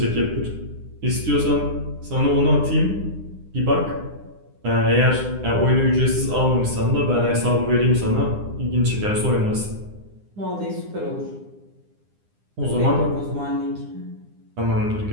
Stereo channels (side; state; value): left; late; 9.9 ms